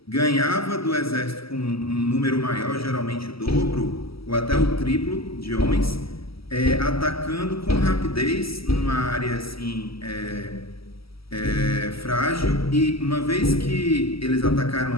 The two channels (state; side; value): late; right; 0.75 ms